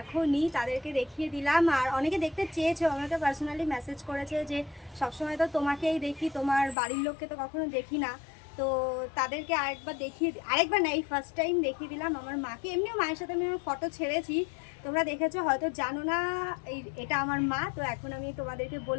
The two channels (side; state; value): right; drops out; at 6.8 s